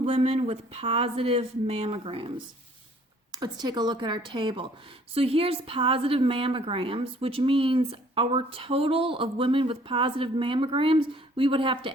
women with positive mammograms. Let's take a look at our table. So here's positive mammograms, which means our total of women with positive mammograms, we would have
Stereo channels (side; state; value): both; normal; correlation 0.58